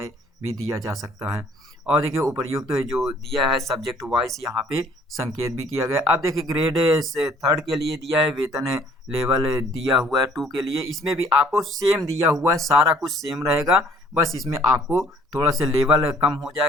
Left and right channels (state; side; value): normal; both; correlation 0.58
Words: भी दिया जा सकता है। और देखिए उपर्युक्त जो दिया है सब्जेक्ट वाइज यहाँ पे संकेत भी किया गया। अब देखिए ग्रेड से 3 के लिए दिया है, वेतन लेवल दिया हुआ है 2 के लिए। इसमें भी आपको सेम दिया हुआ है, सारा कुछ सेम रहेगा, बस इसमें आपको थोड़ा सा लेवल कम हो